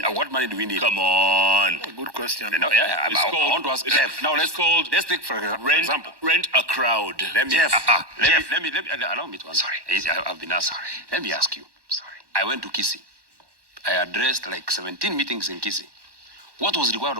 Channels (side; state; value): left; late; 1.1 ms